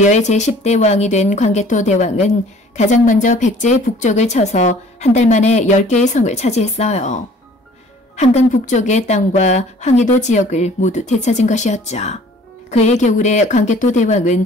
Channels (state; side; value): normal; both; correlation 0.52